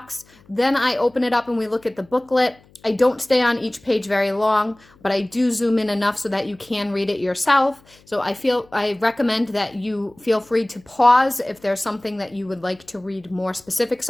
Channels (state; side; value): noise; left; hum, 29 dB below the sound